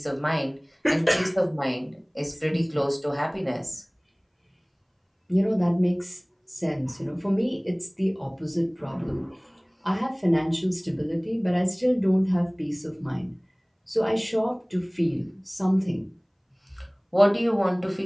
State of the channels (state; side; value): identical; both; correlation 1.00